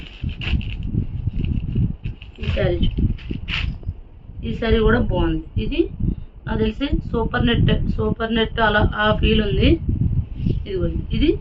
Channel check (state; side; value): identical; both; correlation 1.00